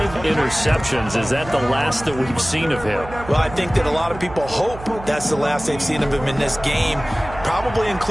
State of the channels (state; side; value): noise; right; hum, 14 dB below the sound